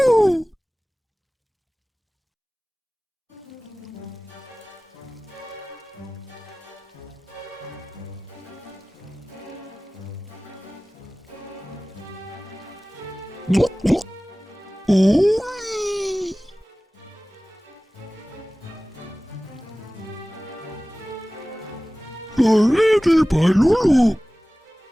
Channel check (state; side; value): normal; both; correlation 0.98